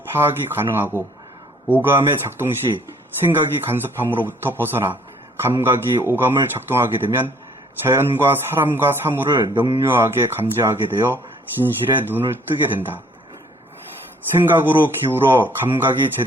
파악이 가능하고 오감의 작동 시 생각이 간섭함으로부터 벗어나 감각이 오감을 작동하게 되면 자연과 사람과 사물을 명료하게 감지하게 되어 진실의 눈을 뜨게 된다. 생각으로 기울어 감각이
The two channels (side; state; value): both; normal; correlation 0.60